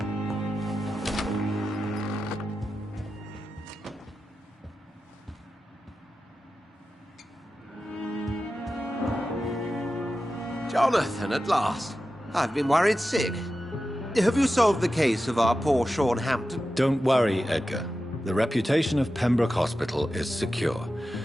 Jonathan, at last. I've been worried sick. Have you solved the case of our poor Sean Hampton? Don't worry, Edgar. The reputation of Pembroke Hospital is secure.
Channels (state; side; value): normal; both; correlation 0.92